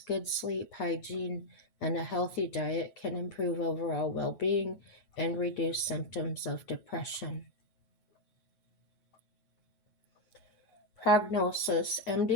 good sleep, hygiene, and a healthy diet can improve overall well being and reduce symptoms of depression. Prognosis.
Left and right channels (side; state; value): right; late; 9.4 ms